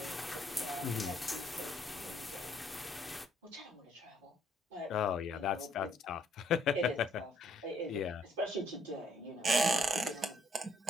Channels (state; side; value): normal; both; correlation 0.68